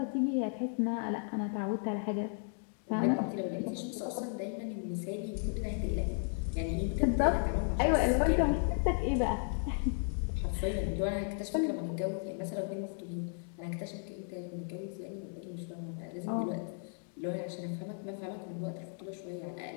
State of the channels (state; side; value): silent; right; 55 dB below the other